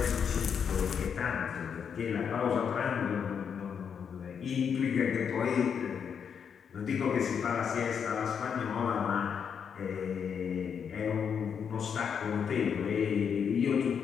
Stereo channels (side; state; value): right; quieter; 7.2 dB